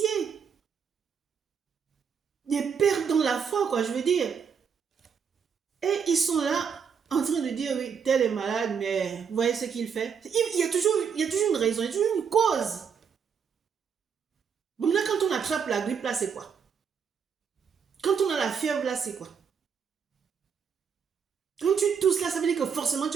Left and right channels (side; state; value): left; quieter; 6.8 dB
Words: des pères dans la foi, quoi, je veux dire. Et ils sont là en train de dire, oui, tel est malade, mais vous voyez ce qu'il fait. Il y a toujours une raison, il y a toujours une cause. Bon, là, quand on attrape la grippe, là, c'est quoi? Quand on a la fièvre, là, c'est quoi? Quand tu tousses, là, ça veut dire que forcément, tu